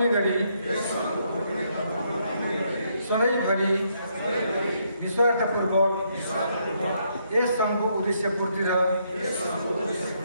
गरी सधैँभरि निस्वार्थपूर्वक यस सङ्घको उद्देश्य पूर्ति र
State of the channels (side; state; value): both; inverted; correlation -0.74